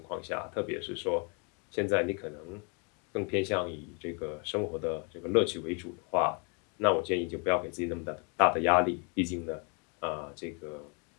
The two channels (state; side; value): quieter; right; 35.6 dB